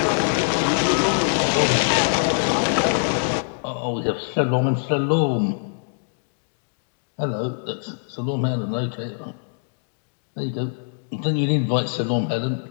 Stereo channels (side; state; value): right; silent; digital silence